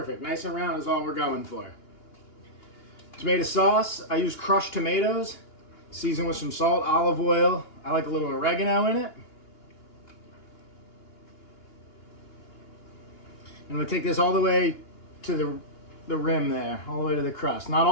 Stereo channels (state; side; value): late; right; 2.9 ms